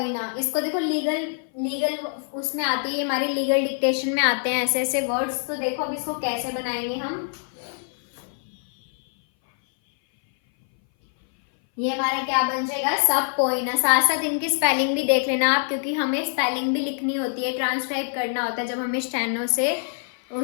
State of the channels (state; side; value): silent; right; 58 dB below the other